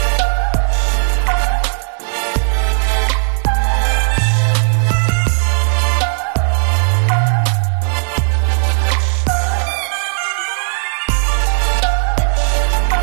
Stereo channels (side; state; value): left; silent; 62 dB below the other